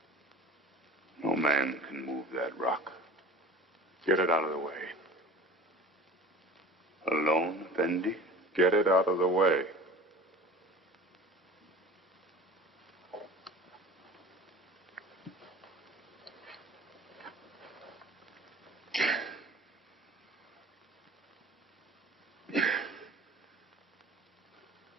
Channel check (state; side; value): normal; both; correlation 0.41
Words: No man can move that rock. Get it out of the way. Alone, Effendi? Get it out of the way.